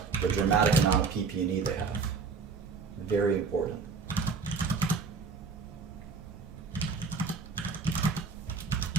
the dramatic amount of PP&E they have. Very important.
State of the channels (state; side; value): quieter; left; 4.9 dB